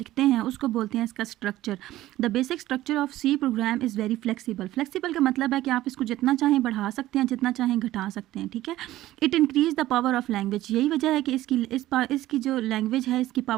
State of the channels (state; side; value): quieter; left; 15.3 dB